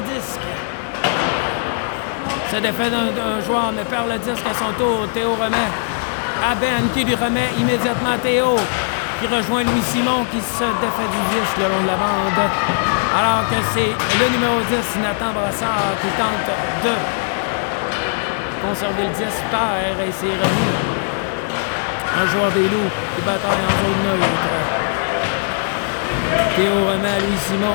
disque. C'est défait d'un joueur, mais perd le disque à son tour. Théo remet à Ben qui lui remet immédiatement Théo qui rejoint Louis Simon qui se défait du disque le long de la bande. Alors que c'est le numéro 10, Nathan Brassard, qui tente de conserver le disque terre et c'est remis. Un joueur des loups qui bataille en zone neutre. Théo remet à Louis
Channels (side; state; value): right; silent; 66 dB below the other